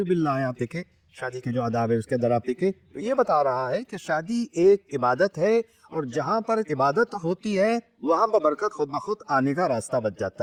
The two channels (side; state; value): both; identical; correlation 1.00